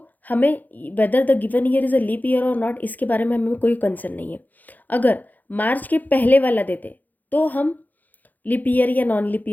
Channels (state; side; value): late; right; 0.083 ms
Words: हमें whether the given year is a leap year और नॉट, इसके बारे में हमें कोई कंसर्न नहीं है। अगर मार्च के पहले वाला देते तो हम लीप ईयर या नॉन लीप